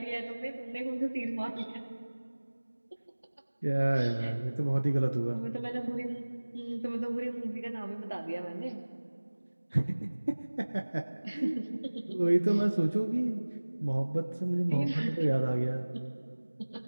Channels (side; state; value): both; inverted; correlation -1.00